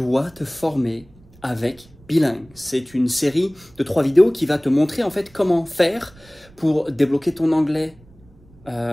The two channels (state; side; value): noise; right; rumble, 26 dB below the sound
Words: te former avec Bilingue. C'est une série de 3 vidéos qui va te montrer en fait comment faire pour débloquer ton anglais